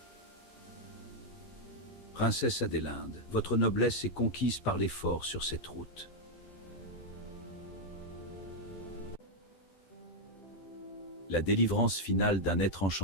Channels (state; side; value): late; right; 12 ms